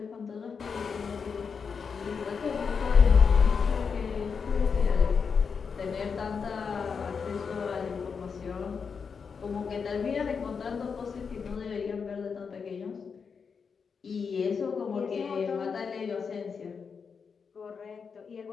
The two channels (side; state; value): right; quieter; 5.9 dB